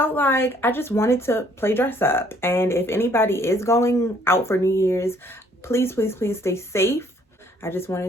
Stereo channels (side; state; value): both; normal; correlation 0.62